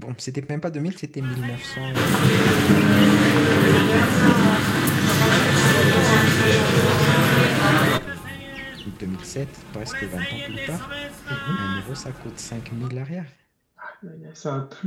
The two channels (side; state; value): both; identical; correlation 1.00